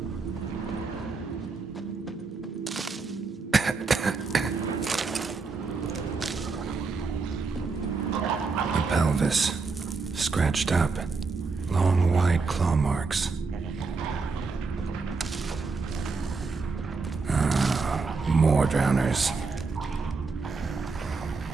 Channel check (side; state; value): left; quieter; 4.4 dB